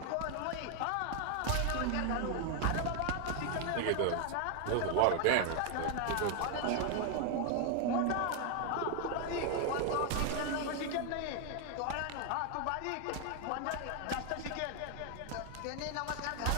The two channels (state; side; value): different; both; correlation 0.00